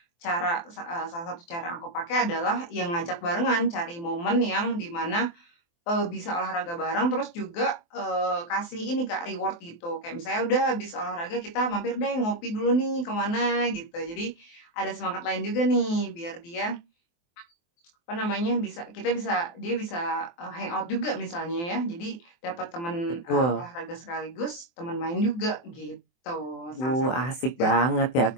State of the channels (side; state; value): right; late; 23 ms